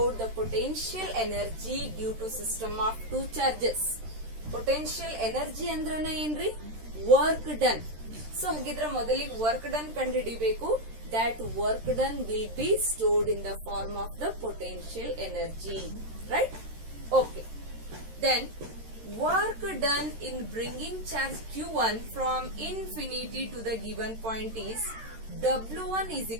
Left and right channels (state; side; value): late; left; 13 ms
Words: the potential energy due to system of 2 charges. Potential energy ಅಂದ್ರನ ಏನ್ರಿ? Work done. So ಹಾಗಿದ್ರೆ ಮೊದಲಿಗೆ work done ಕಂಡುಹಿಡಿಬೇಕು. That work done will be stored in the form of the potential energy. Right? Okay. Then work done in bringing charge Q1 from infinity to the given point is W1 is